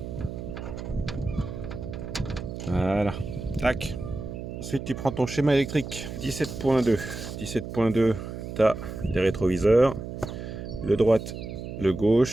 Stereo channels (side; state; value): right; noise; hum, 8 dB below the sound